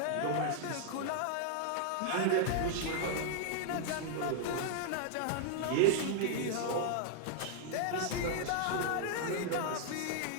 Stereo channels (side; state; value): both; different; correlation 0.00